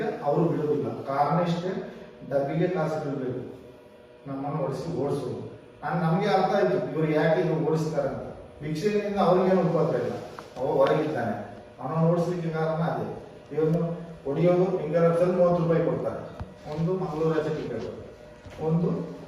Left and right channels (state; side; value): identical; both; correlation 1.00